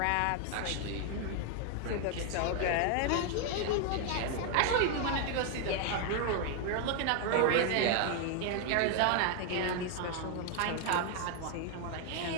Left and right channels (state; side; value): different; both; correlation 0.01